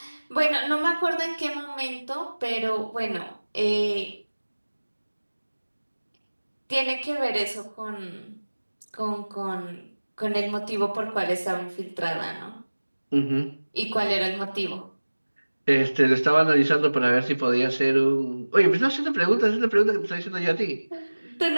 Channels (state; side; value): inverted; both; correlation -1.00